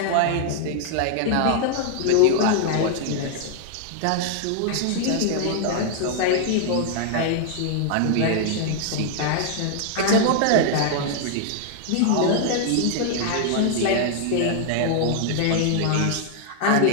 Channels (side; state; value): both; different; correlation 0.00